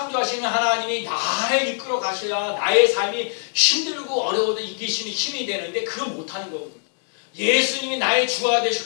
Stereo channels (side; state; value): right; silent; digital silence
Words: 하나님이 나를 이끌어 가셔야 나의 삶이 힘들고 어려워도 이기시는 힘이 되는데 그걸 못하는 거거든요. 예수님이 나의 주가